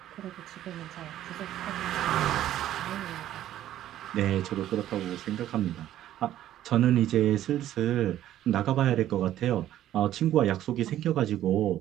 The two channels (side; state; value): left; quieter; 12.5 dB